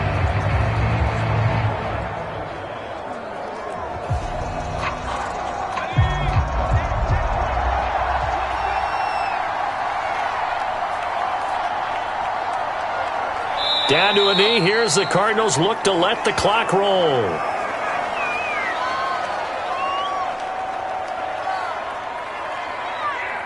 Down to a knee. Here's the Cardinals look to let the clock roll.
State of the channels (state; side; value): identical; both; correlation 1.00